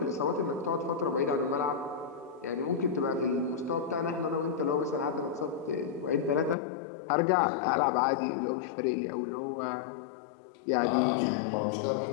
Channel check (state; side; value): drops out; right; at 6.6 s